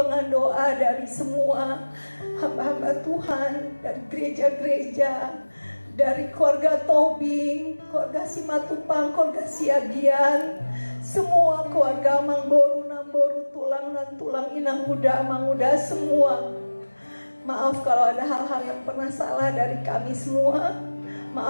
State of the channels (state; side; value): inverted; both; correlation -1.00